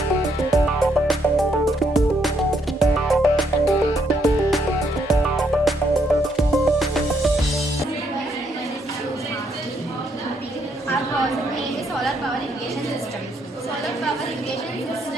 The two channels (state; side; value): normal; both; correlation 0.73